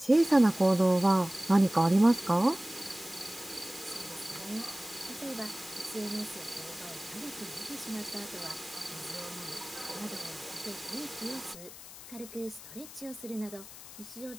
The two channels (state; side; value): noise; left; hiss, 15 dB below the sound